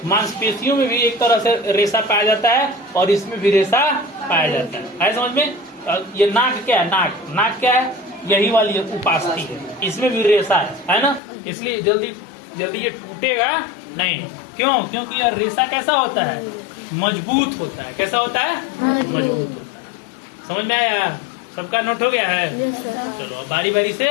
मांसपेशियों में भी एक तरह से रेशा पाया जाता है और इसमें भी रेशा पाया जाता है। समझ में? ये नाक क्या है? नाक क्या है? यही वाली उपास्थि है, इसमें भी रेशा है ना। इसलिए जल्दी ये टूटेगा नहीं। क्यों? क्योंकि यह रेशा कैसा होता है? मजबूत होता है। कैसा होता है? मजबूत होता है। समझ में आया? सबका नोट हो गया है? चलो अब बारी बारी से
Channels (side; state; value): right; drops out; at 11.2 s